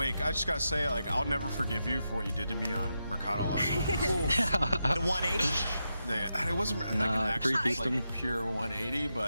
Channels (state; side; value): inverted; both; correlation -0.87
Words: I just gotta say, like, I'll never forgive you for what you did to me on Mercado last night. The 180? It wasn't like an actual like pure 180,